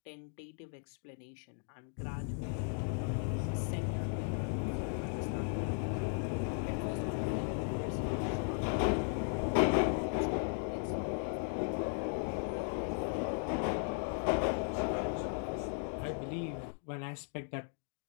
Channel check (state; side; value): silent; right; 53 dB below the other